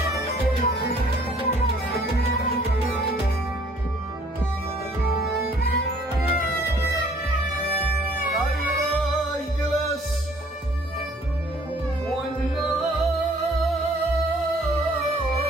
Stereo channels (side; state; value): both; normal; correlation 0.58